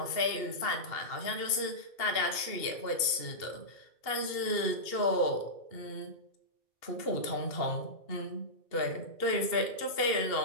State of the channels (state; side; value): late; right; 2.7 ms